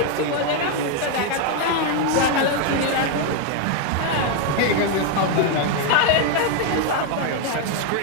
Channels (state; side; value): different; both; correlation 0.01